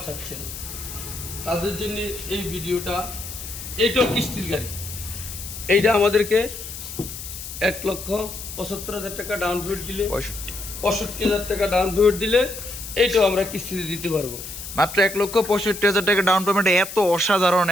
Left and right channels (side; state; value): left; noise; hiss, 10 dB below the sound